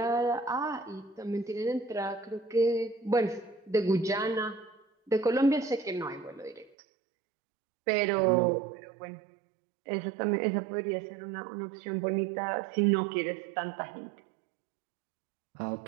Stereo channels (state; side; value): drops out; left; at 6.7 s